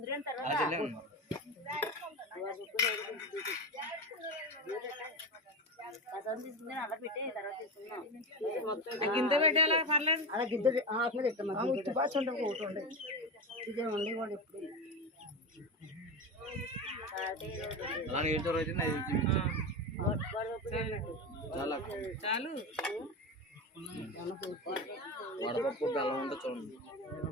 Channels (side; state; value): both; normal; correlation 0.20